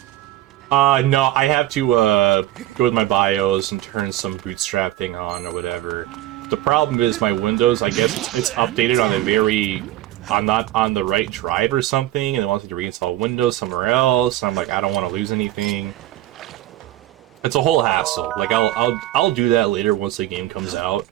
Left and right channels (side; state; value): left; quieter; 14.7 dB